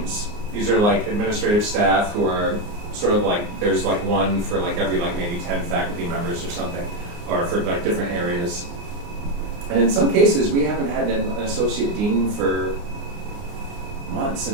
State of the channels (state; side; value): late; left; 29 ms